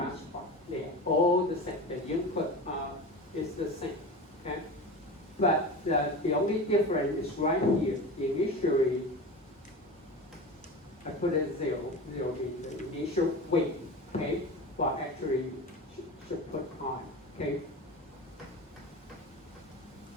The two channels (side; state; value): both; normal; correlation 0.29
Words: They are all the same. The input is the same. Okay? But the only difference is right here. Initially, I put it 0. 0 means the initial weight. Okay? Well, actually, should put high. Okay?